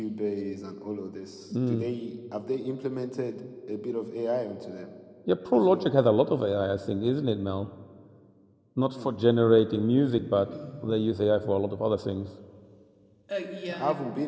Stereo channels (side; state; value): both; identical; correlation 1.00